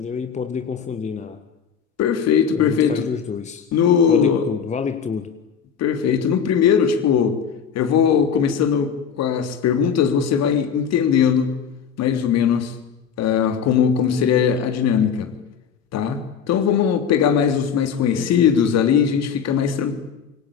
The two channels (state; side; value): quieter; right; 7.3 dB